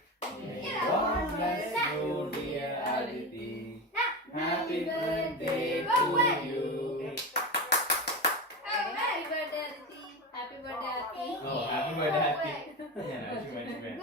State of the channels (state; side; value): normal; both; correlation 0.21